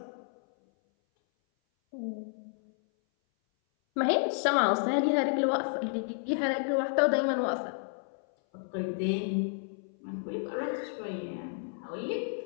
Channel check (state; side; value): silent; right; 57 dB below the other